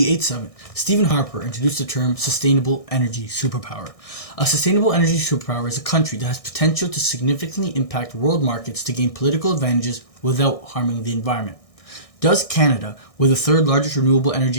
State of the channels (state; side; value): late; right; 1.6 ms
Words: summit, Stephen Harper introduced the term sustainable energy superpower. A sustainable energy superpower is a country that has potential to significantly impact world markets to gain political advantages without harming the environment. Does Canada, with the third largest renewable